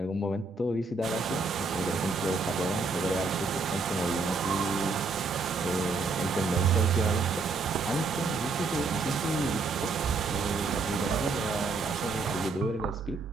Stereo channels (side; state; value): left; quieter; 4.0 dB